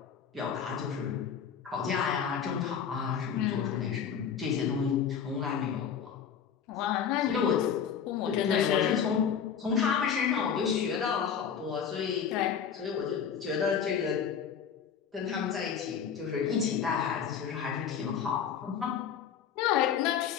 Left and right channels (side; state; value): right; quieter; 7.6 dB